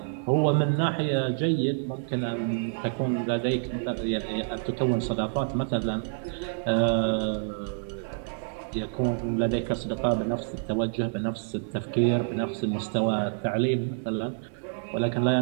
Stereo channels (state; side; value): silent; left; digital silence